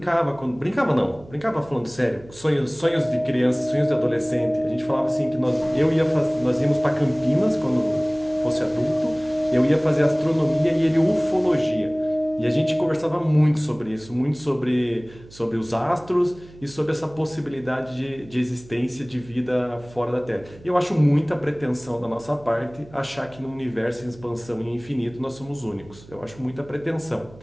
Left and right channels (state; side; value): noise; right; hum, 21 dB below the sound